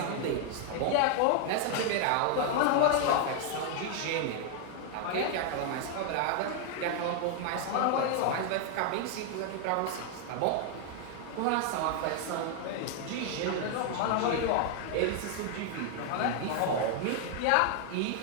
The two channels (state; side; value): different; both; correlation 0.00